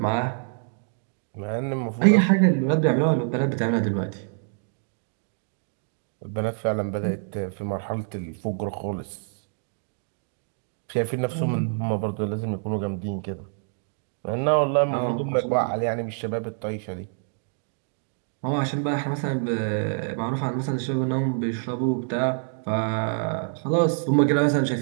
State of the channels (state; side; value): silent; left; 61 dB below the other